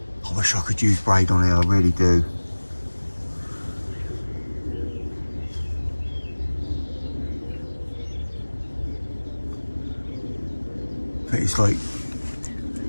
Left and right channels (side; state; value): both; inverted; correlation -1.00